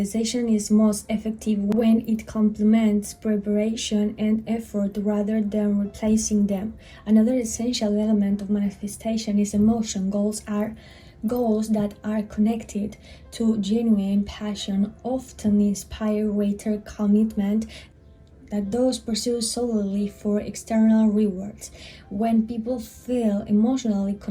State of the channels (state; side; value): identical; both; correlation 1.00